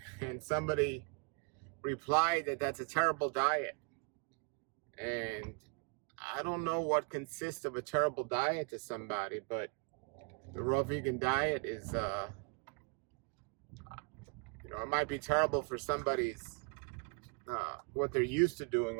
and somebody replied that that's a terrible diet. And I don't know what consists of a terrible diet to somebody, but the raw vegan diet is, it might be terrible for somebody's what they're used to doing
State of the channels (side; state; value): left; quieter; 36.6 dB